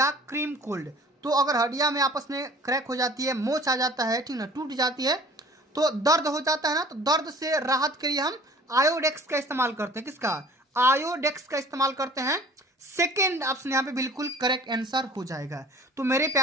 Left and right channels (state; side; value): normal; both; correlation 0.48